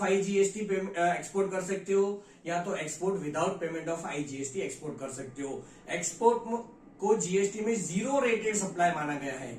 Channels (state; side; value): identical; both; correlation 1.00